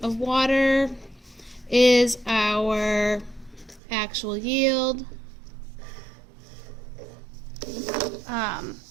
water is our actual yield.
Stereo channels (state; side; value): drops out; left; at 3.8 s